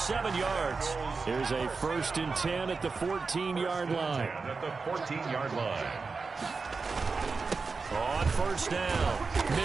yards. Here's a 1st and 10 at the 14-yard line. At the 14-yard line. On first down,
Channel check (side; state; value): left; quieter; 4.5 dB